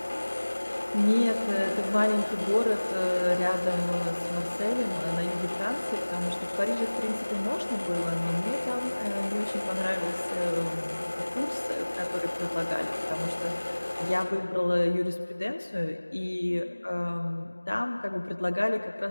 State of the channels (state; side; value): inverted; both; correlation -1.00